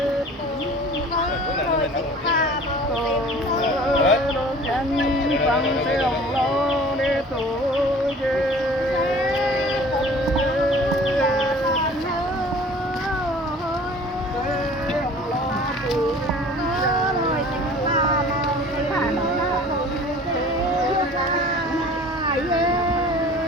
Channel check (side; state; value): both; normal; correlation 0.46